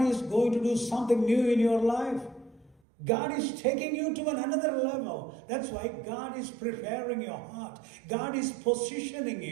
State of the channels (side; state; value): left; drops out; at 2.8 s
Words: is going to do something new in your life. God is taking you to another level. That's why God is preparing your heart. God is positioning